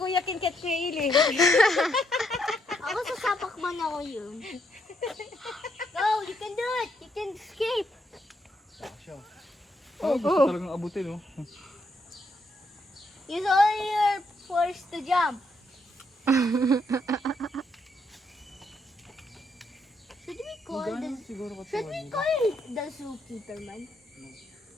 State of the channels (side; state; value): both; normal; correlation 0.76